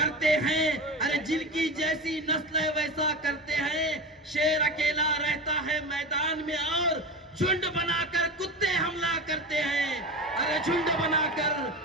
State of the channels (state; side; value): normal; both; correlation 0.26